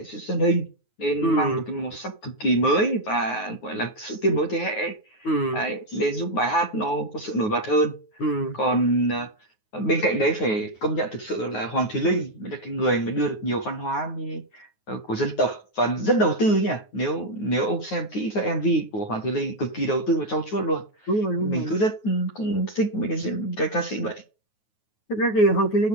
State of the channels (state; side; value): late; right; 9.4 ms